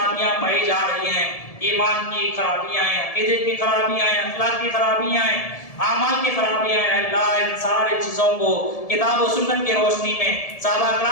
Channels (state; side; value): late; right; 1.7 ms